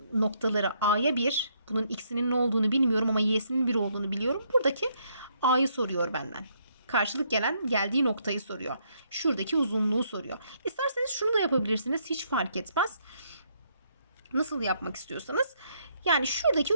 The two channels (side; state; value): both; inverted; correlation -0.71